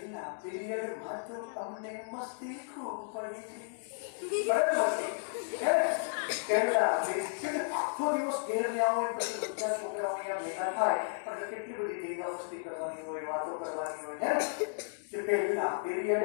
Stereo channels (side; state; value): right; silent; digital silence